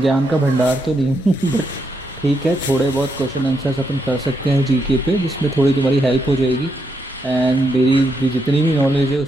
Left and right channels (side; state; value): both; normal; correlation 0.80